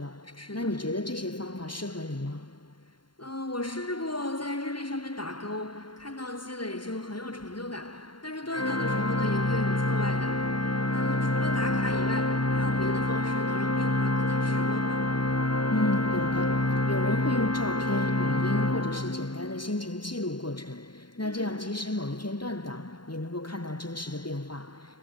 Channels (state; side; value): late; right; 0.72 ms